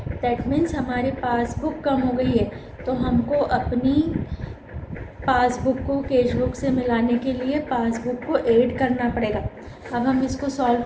दैट मीन्स हमारी पासबुक कम हो गई है, तो हमको अपनी पासबुक को कैश बुक से मिलाने के लिए पासबुक को ऐड करना पड़ेगा। अब हम इसको सॉल्व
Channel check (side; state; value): both; identical; correlation 1.00